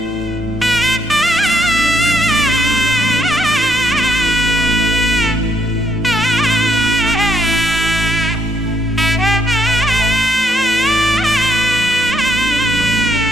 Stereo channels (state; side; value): normal; both; correlation 0.73